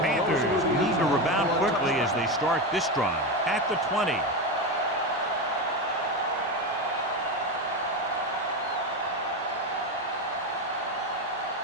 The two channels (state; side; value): normal; both; correlation 0.16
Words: need to rebound quickly as they start this drive at the 20.